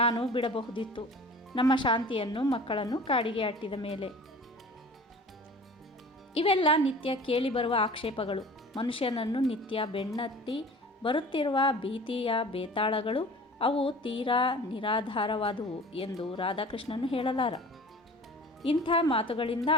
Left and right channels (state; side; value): normal; both; correlation 0.42